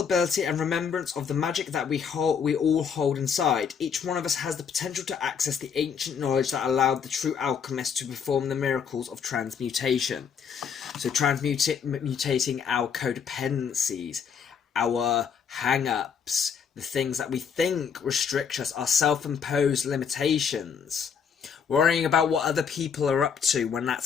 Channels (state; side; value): quieter; right; 6.9 dB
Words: and remembrance of the magic that we all hold inside. Each one of us has the potential to access the ancient knowledge that allowed the true alchemist to perform the miracles of transmutation. So transmutating our codependencies, our hang-ups, the things that we think restrict us, our self-imposed limitations. Worrying about what other people are up to when